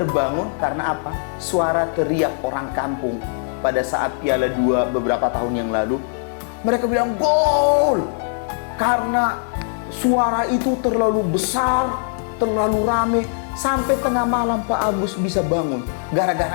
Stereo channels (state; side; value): silent; right; 64 dB below the other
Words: karena apa? Suara teriak orang kampung pada saat Piala 2 beberapa tahun yang lalu. Mereka bilang gol karena suara itu terlalu besar, terlalu rame. Sampai tengah malam Pak Agus bisa bangun.